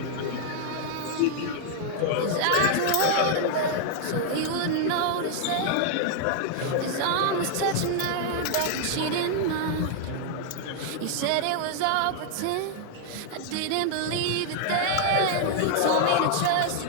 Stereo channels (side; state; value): both; different; correlation 0.00